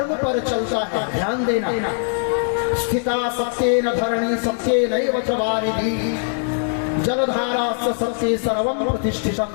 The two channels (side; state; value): right; silent; digital silence